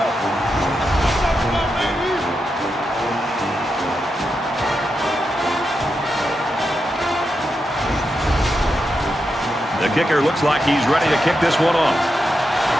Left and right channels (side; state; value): both; normal; correlation 0.86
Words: The kicker looks like he's ready to kick this one off.